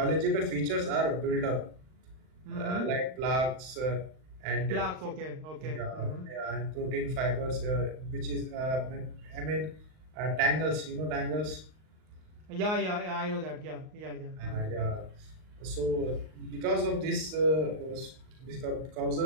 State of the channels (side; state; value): left; late; 39 ms